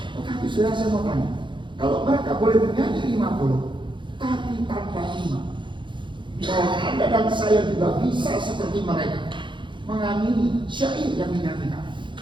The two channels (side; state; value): left; late; 0.23 ms